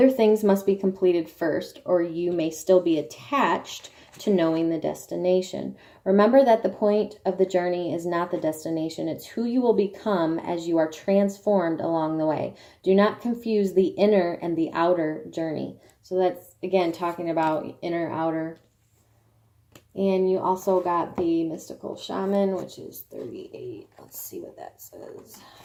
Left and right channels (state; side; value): identical; both; correlation 1.00